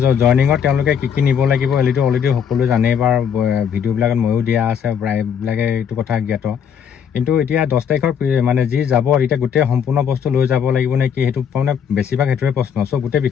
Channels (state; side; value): quieter; right; 7.8 dB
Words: জইনিঙত তেওঁলোকে কি নিব লাগিব এইটো অলৰেডি সকলোৱে জানেই বা ভিডিঅ'বিলাকত ময়ো দিয়া আছে প্ৰায়বিলাকে এইটো কথা জ্ঞাত কিন্তু এতিয়া 10 তাৰিখৰ মানে যি যাব এতিয়া গোটেই সম্পূৰ্ণ বস্তু লৈ যাব লাগিব নে কি সেইটো মানে বেছিভাগ সেইটোৱে প্ৰশ্ন চ' গোটেই